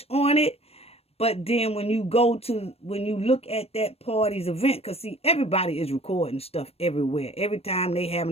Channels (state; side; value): late; right; 0.29 ms